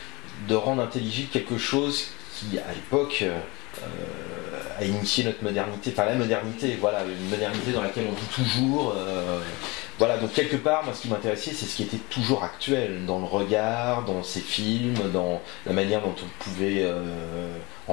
rendre intelligible quelque chose qui à l'époque a initié notre modernité, enfin la modernité, voilà, une modernité dans laquelle on vit toujours. Voilà, donc quelque part, moi ce qui m'intéressait, c'est ce qui était toujours actuel, dans le regard, dans ces films, dans la manière dont on pouvait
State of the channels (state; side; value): quieter; right; 25.2 dB